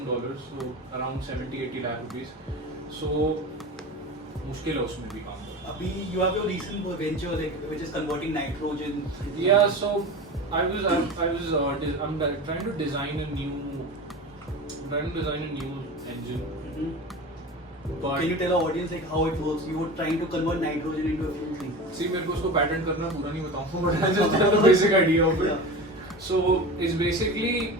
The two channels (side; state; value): both; normal; correlation 0.30